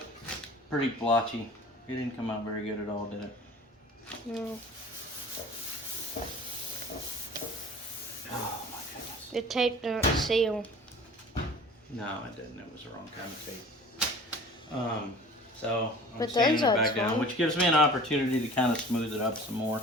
pretty blotchy. It didn't come out very good at all, did it? No. Oh my goodness. The tape don't seal. No, it didn't. It was the wrong kind of tape. So I'm But sanding it those back look down, fine. which gives me an opportunity to kind of smooth it up some more.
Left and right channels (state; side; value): normal; both; correlation 0.43